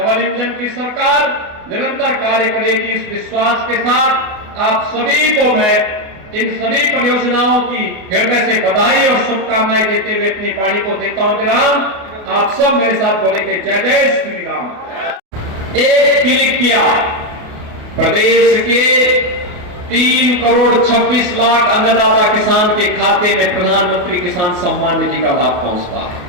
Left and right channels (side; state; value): left; late; 28 ms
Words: इंजन की सरकार निरंतर कार्य करेगी। इस विश्वास के साथ आप सभी को मैं इन सभी परियोजनाओं की हृदय से बधाई और शुभकामनाएं देते हुए अपनी वाणी को देता हूं विराम। आप सब मेरे साथ बोलेंगे जय जय श्री राम। एक क्लिक किया, प्रदेश के 3 करोड़ 26 लाख अन्नदाता किसान के खाते में प्रधानमंत्री किसान सम्मान निधि का लाभ पहुंचता है।